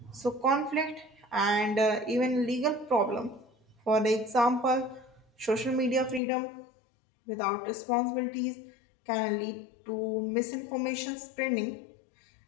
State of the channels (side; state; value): right; drops out; at 6.2 s